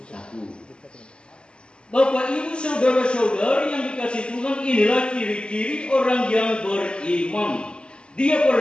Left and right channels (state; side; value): late; right; 0.051 ms